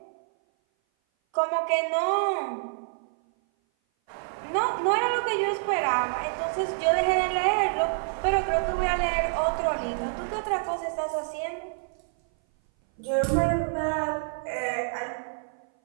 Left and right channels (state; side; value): silent; left; 57 dB below the other